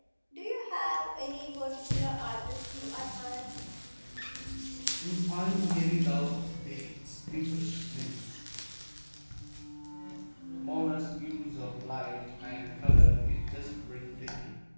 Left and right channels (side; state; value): both; inverted; correlation -1.00